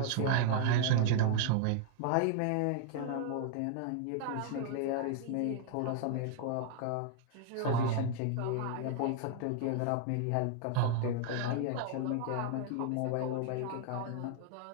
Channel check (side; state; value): both; different; correlation 0.00